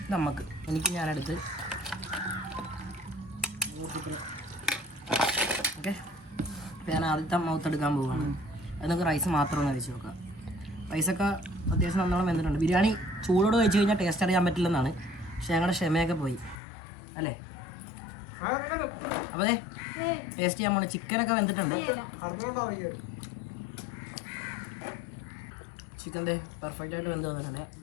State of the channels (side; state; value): right; drops out; at 16.6 s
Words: നമുക്ക് എനിക്ക് ഞാനെടുത്ത് ഓക്കെ. ഞാൻ ആദ്യത്തെ മൗത്തെടുക്കാൻ പോവുകയാണ്. അത് നമുക്ക് റൈസ് മാത്രം ഒന്ന് കഴിച്ച് നോക്കാം. റൈസൊക്കെ അത്യാവശ്യം നല്ലോണം വെന്തിട്ടുണ്ട്. ബിരിയാണി ചൂടോട് കഴിച്ച് കഴിഞ്ഞാൽ ടേസ്റ്റ് അറിയാൻ പറ്റില്ലെന്നാണ്, പക്ഷെ ഞങ്ങളുടെ ക്ഷമയൊക്കെ പോയി അല്ലേ. അപ്പോൾ അതെ ടേസ്റ്റ് ചെയ്യാൻ പോണേ. ചിക്കനൊക്കെ വെന്തിട്ടുണ്ട്. ചിക്കൻ്റെ പെർഫെക്റ്റ് ആയിട്ട് വെന്ത് വന്നിട്ടുണ്ട്.